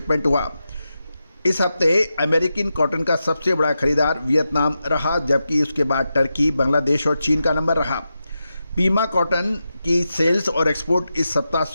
हुआ। इस हफ्ते अमेरिकन कॉटन का सबसे बड़ा खरीदार वियतनाम रहा, जबकि उसके बाद टर्की, बांग्लादेश और चीन का नंबर रहा। पीमा कॉटन की सेल्स और एक्सपोर्ट इस सप्ताह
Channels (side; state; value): both; inverted; correlation -0.89